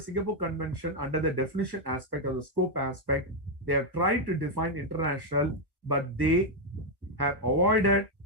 Singapore Convention, under the definition aspect or the scope aspect, they have tried to define international, but they have avoided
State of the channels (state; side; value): late; left; 1.2 ms